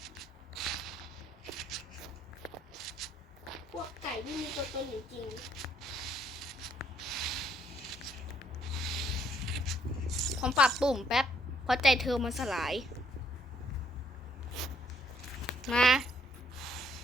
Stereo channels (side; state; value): both; normal; correlation 0.68